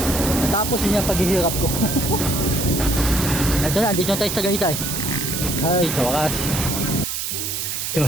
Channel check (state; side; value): noise; right; hiss, 3 dB below the sound